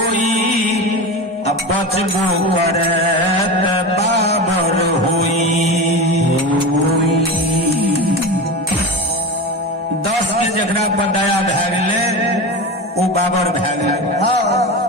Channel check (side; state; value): both; normal; correlation 0.26